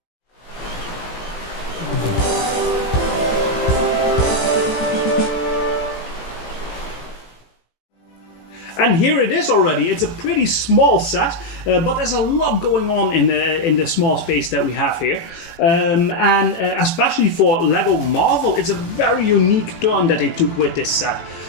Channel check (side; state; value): right; late; 18 ms